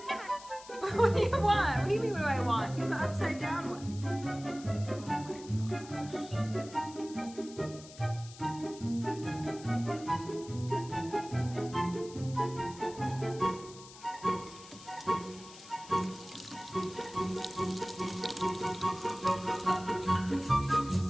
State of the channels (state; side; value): noise; left; hiss, 18 dB below the sound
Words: What do you want? What do you mean, what do I want? You're the upside down one.